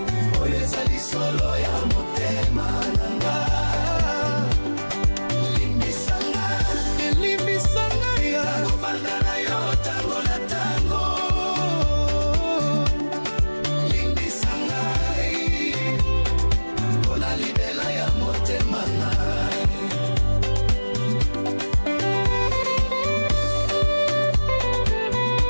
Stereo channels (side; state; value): both; inverted; correlation -1.00